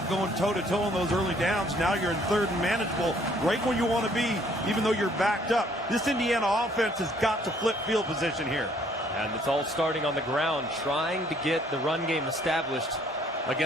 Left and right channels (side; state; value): both; normal; correlation 0.62